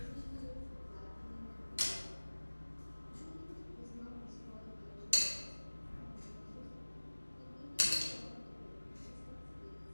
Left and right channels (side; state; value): both; inverted; correlation -1.00